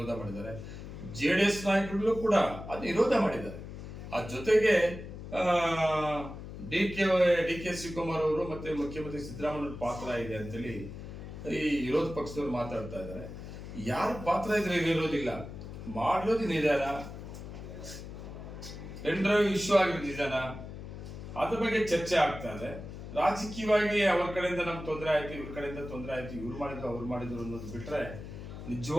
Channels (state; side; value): noise; left; hum, 11 dB below the sound